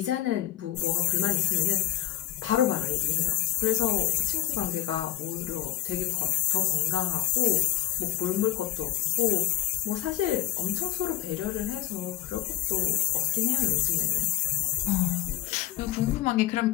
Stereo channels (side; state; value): right; quieter; 14.6 dB